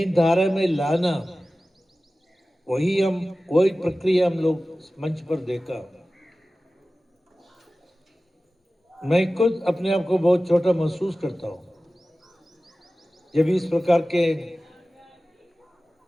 धारा में लाना, वही प्रक्रिया हम लोग मंच पर देखा। मैं खुद अपने आप को बहुत छोटा महसूस करता हूँ जब इस प्रकार के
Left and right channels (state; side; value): normal; both; correlation 0.96